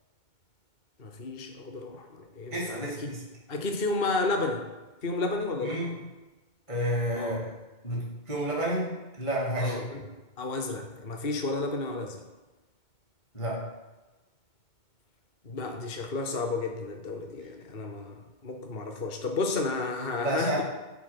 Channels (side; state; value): right; late; 2.2 ms